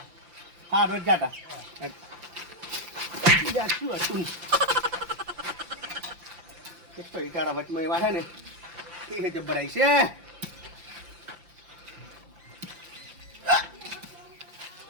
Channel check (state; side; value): late; left; 5.8 ms